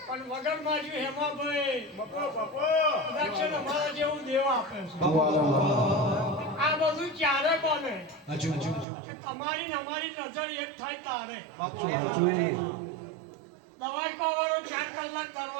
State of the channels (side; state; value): left; drops out; at 8.8 s